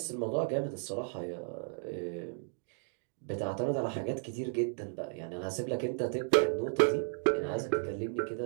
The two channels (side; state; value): left; silent; 55 dB below the other